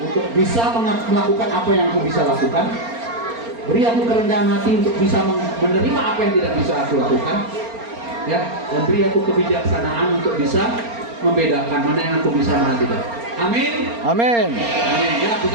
bisa melakukan apa yang aku bisa lakukan. Beri aku kerendahan hati untuk bisa menerima apa yang tidak bisa aku lakukan. Ya, dan beri aku kebijaksanaan untuk bisa membedakan mana yang aku bisa, mana tidak. Amin. Amin. Amin. Ya,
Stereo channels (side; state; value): left; late; 4.3 ms